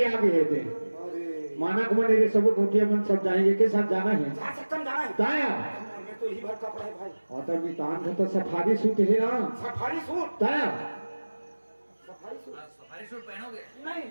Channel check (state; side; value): inverted; both; correlation -1.00